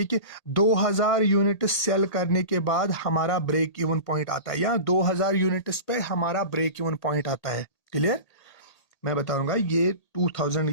कि 2000 यूनिट सेल करने के बाद हमारा ब्रेक इवन पॉइंट आता है, या 2000 यूनिट्स पे हमारा ब्रेक इवन पॉइंट आता है। क्लियर? मैं बताऊंगा ये 2000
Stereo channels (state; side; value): late; right; 1.8 ms